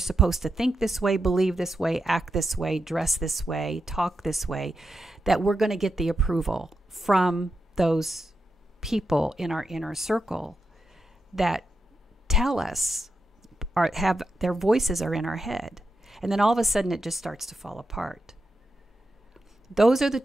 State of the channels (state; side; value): normal; both; correlation 0.87